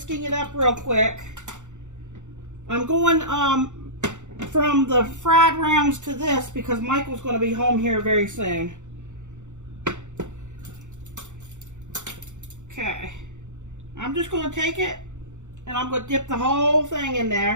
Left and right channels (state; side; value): late; left; 0.85 ms